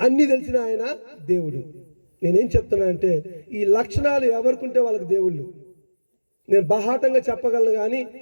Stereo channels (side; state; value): both; inverted; correlation -1.00